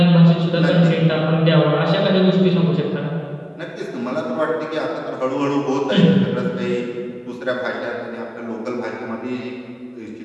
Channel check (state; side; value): identical; both; correlation 1.00